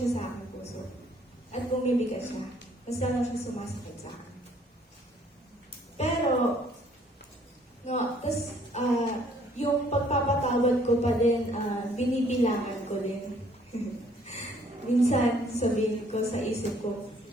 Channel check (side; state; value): both; normal; correlation 0.62